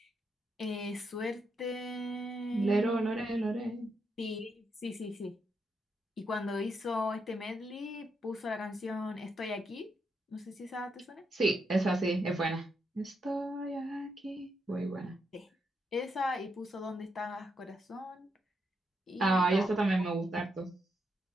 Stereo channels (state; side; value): normal; both; correlation 0.81